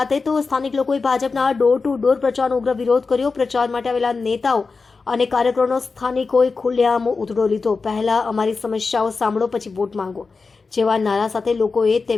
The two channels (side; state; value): right; quieter; 4.4 dB